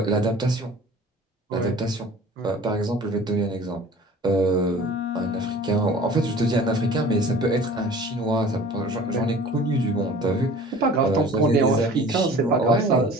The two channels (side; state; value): both; normal; correlation 0.45